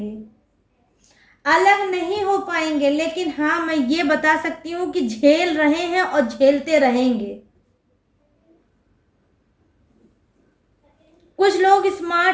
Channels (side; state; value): both; identical; correlation 1.00